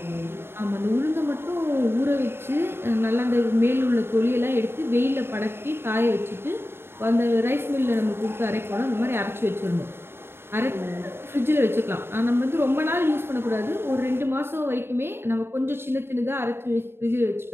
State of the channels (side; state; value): left; late; 0.11 ms